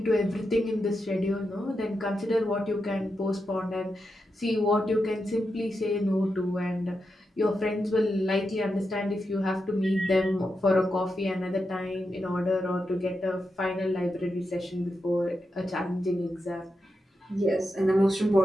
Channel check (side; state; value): both; normal; correlation 0.87